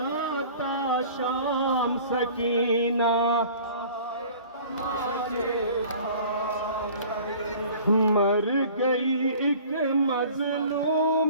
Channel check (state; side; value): inverted; both; correlation -0.47